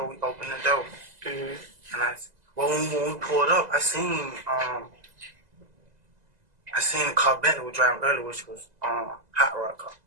we opened the door. Mm-hmm. And when we pulled up, I seen the car Bentley was driving earlier, which was Hot Rod car.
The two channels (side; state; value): left; late; 2.0 ms